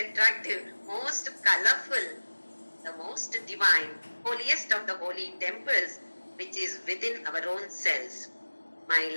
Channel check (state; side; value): inverted; both; correlation -1.00